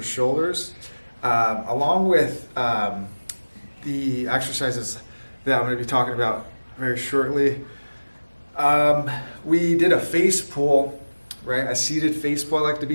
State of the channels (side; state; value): both; inverted; correlation -1.00